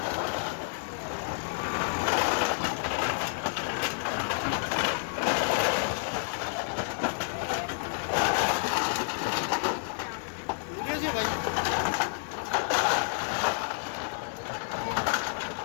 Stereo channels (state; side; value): silent; right; digital silence